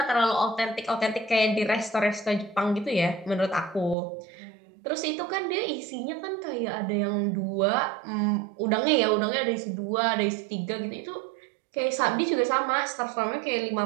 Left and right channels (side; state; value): left; drops out; at 4.0 s